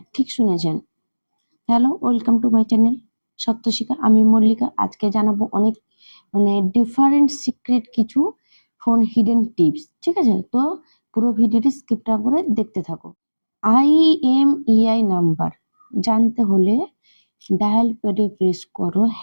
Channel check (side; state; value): both; inverted; correlation -1.00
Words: ঠিক শুনেছেন। Hello, welcome to my channel Satyashikha. আমি মল্লিকা। আজকে জানাবো অনেক ডিফারেন্ট সিক্রেট কিছু ফোন হিডেন টিপস। ঠিক আছে, তো পুরো ভিডিওটি স্কিপ না করে দেখতে থাকো। IMEI নাম্বার জানতে হলে ডায়াল প্যাডে প্রেস করো